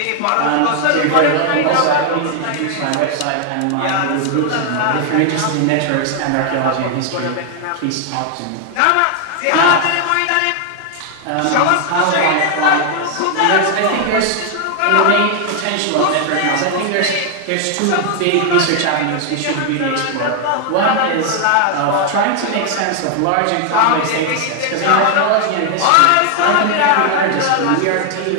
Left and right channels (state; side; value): different; both; correlation 0.00